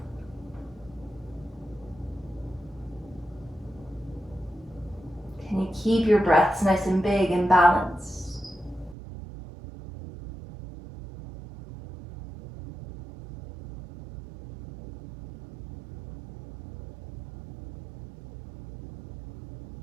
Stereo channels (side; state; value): left; drops out; at 9.0 s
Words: Can you keep your breaths nice and big and balanced?